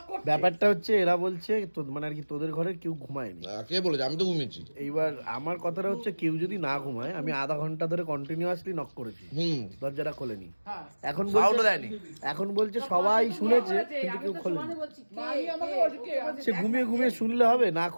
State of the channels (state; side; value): inverted; both; correlation -1.00